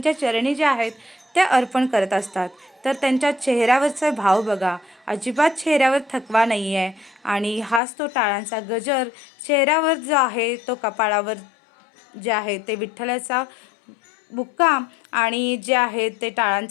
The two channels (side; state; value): right; drops out; at 7.8 s